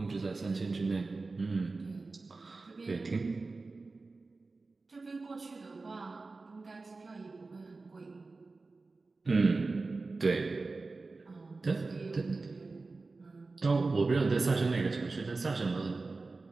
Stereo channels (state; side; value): quieter; left; 3.7 dB